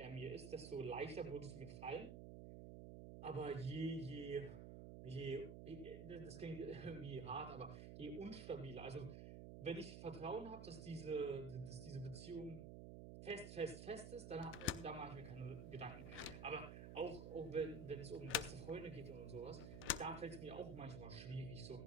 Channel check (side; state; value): right; noise; hum, 8 dB below the sound